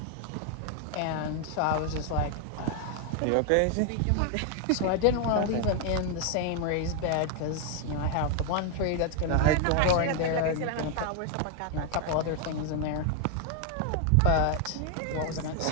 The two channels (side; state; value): both; different; correlation 0.00